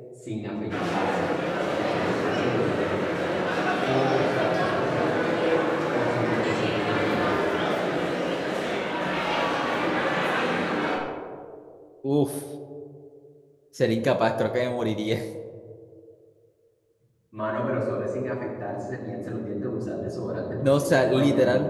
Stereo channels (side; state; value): both; identical; correlation 1.00